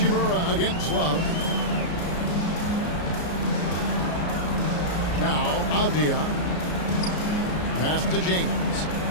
against Love. Now, Avdia. Pass to James.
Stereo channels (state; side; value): late; right; 34 ms